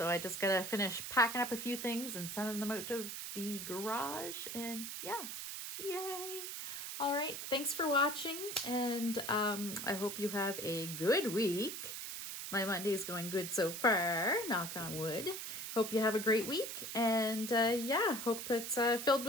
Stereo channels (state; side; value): noise; right; hiss, 6 dB below the sound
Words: I just got to finish packing up a few things and sending them out to the garage, and yeah, yay. All right, thanks for watching, and I hope you have a good week. My Monday's going good so far, knock on wood. Hope you have a great week, and yeah, hope it's filled